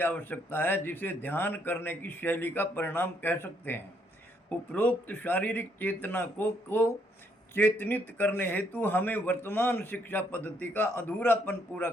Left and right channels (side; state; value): both; normal; correlation 0.72